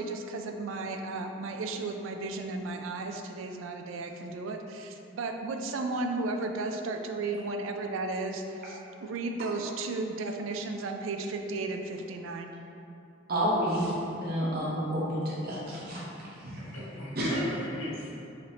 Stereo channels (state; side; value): normal; both; correlation 0.28